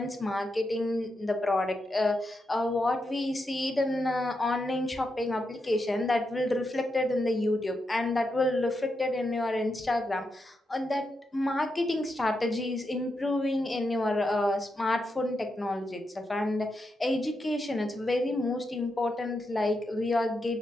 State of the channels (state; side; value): normal; both; correlation 0.85